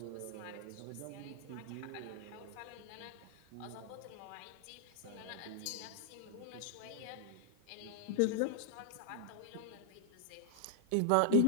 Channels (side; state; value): both; different; correlation 0.00